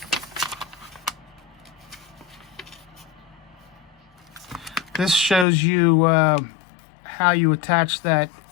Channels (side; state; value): right; drops out; at 5.5 s